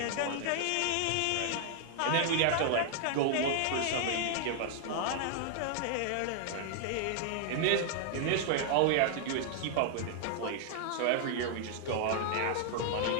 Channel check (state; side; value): different; both; correlation -0.01